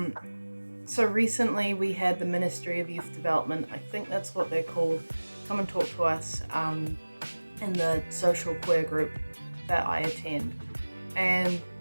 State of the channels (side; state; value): both; inverted; correlation -1.00